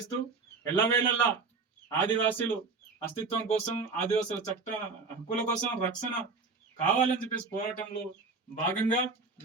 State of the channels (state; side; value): quieter; left; 4.4 dB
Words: ఎల్లవేళల్లా ఆదివాసీలు అస్తిత్వం కోసం, ఆదివాసుల చట్ట హక్కుల కోసం రక్షణ కావాలని చెప్పేసి పోరాటంలో భాగంగా